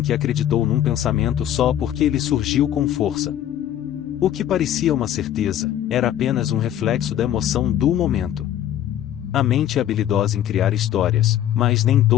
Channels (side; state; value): right; quieter; 11.4 dB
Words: que acreditou num pensamento só porque ele surgiu com força. O que parecia uma certeza, era apenas um reflexo da emoção do momento. A mente é habilidosa em criar histórias, mas nem